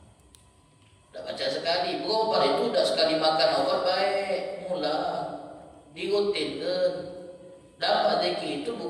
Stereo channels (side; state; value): both; identical; correlation 1.00